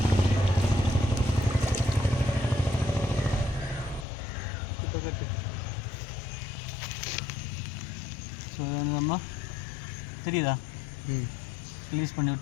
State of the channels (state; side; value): drops out; right; at 4.0 s